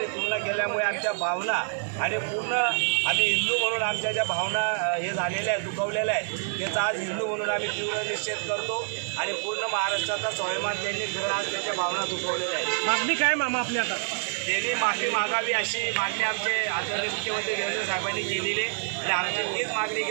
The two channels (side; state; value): left; silent; digital silence